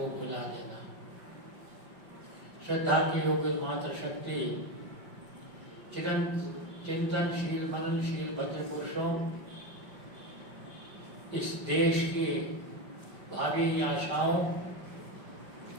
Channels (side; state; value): left; late; 5.0 ms